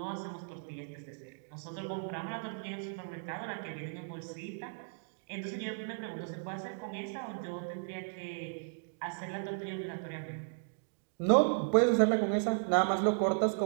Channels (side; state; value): left; silent; digital silence